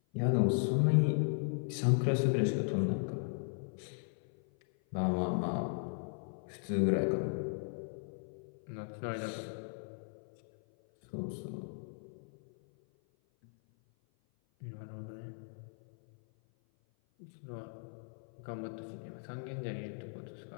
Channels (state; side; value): silent; right; 53 dB below the other